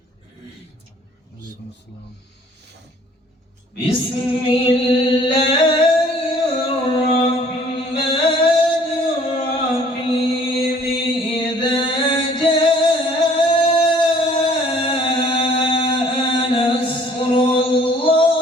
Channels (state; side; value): normal; both; correlation 0.57